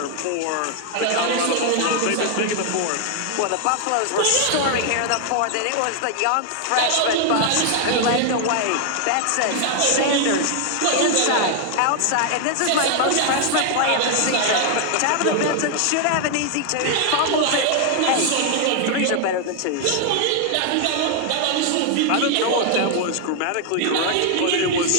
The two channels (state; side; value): different; both; correlation 0.00